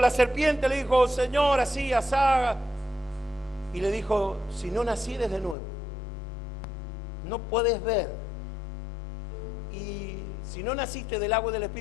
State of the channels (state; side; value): drops out; right; at 5.6 s